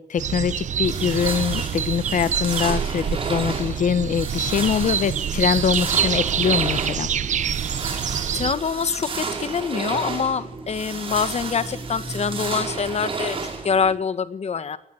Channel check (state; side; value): normal; both; correlation 0.27